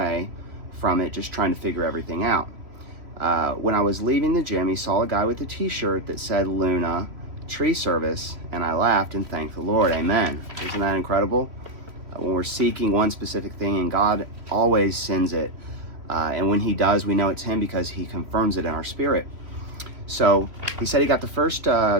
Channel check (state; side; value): late; left; 3.0 ms